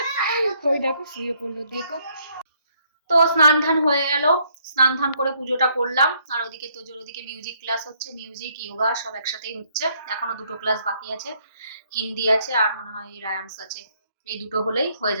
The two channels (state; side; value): inverted; both; correlation -0.69